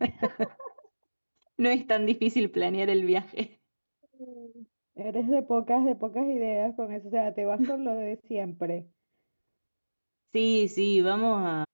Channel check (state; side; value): inverted; both; correlation -1.00